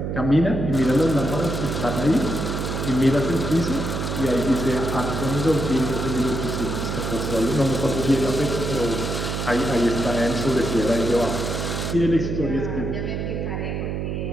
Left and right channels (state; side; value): noise; right; hum, 3 dB below the sound